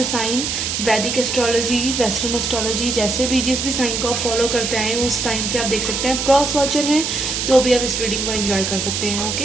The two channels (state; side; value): noise; right; hiss, 2 dB below the sound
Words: साइन, वैदिक एस्ट्रोलॉजी, वेस्टर्न एस्ट्रोलॉजी, जैसे भी जिस भी साइन को आप फॉलो करते हैं उस साइन से आप देख सकते हैं। क्रॉस वॉचर हैं तो भी आप इस रीडिंग को एंजॉय कर सकते हैं।